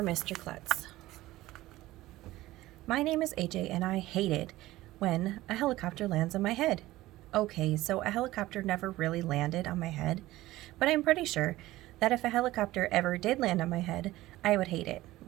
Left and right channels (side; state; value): left; quieter; 17.0 dB